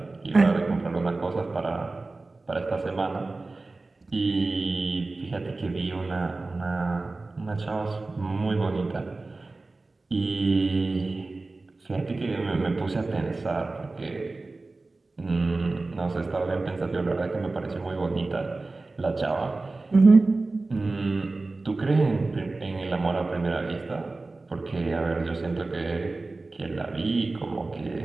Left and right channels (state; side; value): quieter; left; 3.4 dB